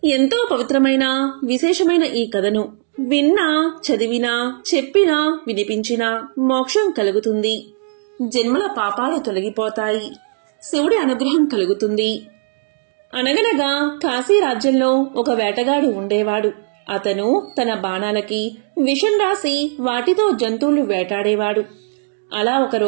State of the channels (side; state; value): left; silent; 67 dB below the other